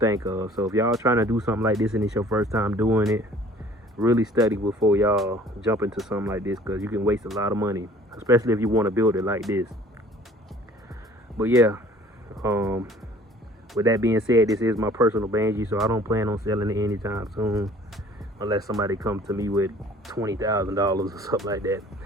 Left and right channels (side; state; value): both; normal; correlation 0.52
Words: of. So if y'all trying to do something like this and it's your first time doing it, really study before y'all jump into something like this, because you can waste a lot of money, especially if you want to build it like this. But yeah, with that being said, this is my personal banshee, so I don't plan on selling it anytime soon, unless somebody comes to me with $20,000 or something like that.